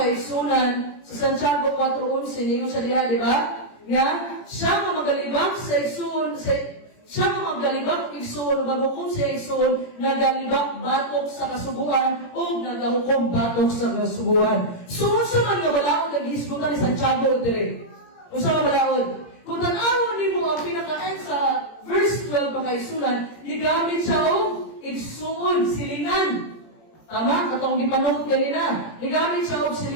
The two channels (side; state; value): right; late; 17 ms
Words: sa Santiago 4:11 ninyo sa diha, di ba? Nga, siya nga magalibak sa igsuon, siya nga magalibak igsuon, bago kung siya igsuon, nagalibak batok sa kasubuan o nagahukom batok sa kasubuan. So, unsa man nga balaod naghisgutan ni Santiago dire? Unsa nga balaod? Kung tanawon nimo ang pinaka-end sa verse 12 mga isunan, gigamit siya og igsuon, silingan. Tama? Katong gipanong kanina. Gigamit siya og